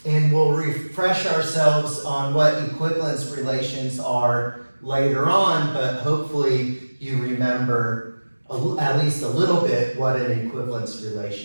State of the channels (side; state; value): both; inverted; correlation -1.00